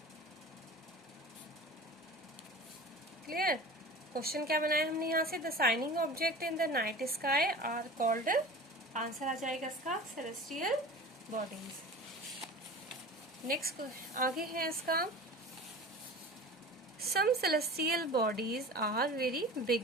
क्लियर। क्वेश्चन क्या बनाया हमने यहाँ से, the shining object in the night sky are called, answer आ जाएगा इसका सेलेस्टियल बॉडीज। नेक्स्ट आगे है इसका, some celestial bodies are very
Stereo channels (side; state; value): both; normal; correlation 0.36